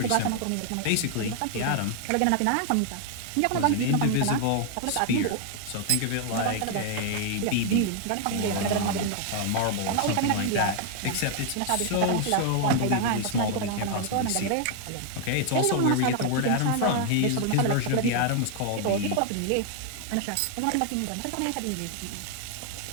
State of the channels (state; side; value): different; both; correlation 0.00